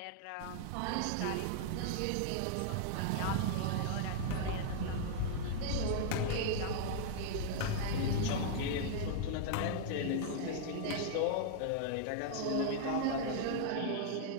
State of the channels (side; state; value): both; different; correlation -0.01